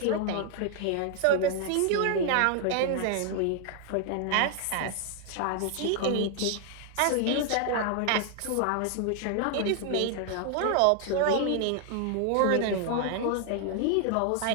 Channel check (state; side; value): different; both; correlation 0.00